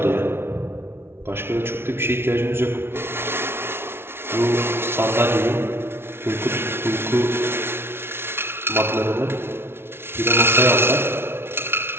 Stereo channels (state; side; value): late; left; 0.12 ms